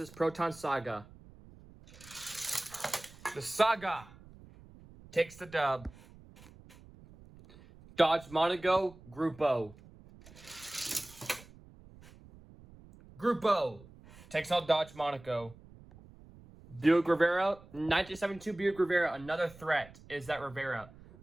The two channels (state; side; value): noise; right; rumble, 21 dB below the sound